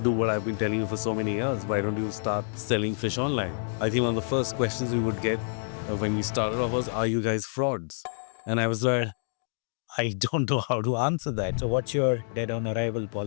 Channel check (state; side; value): silent; right; digital silence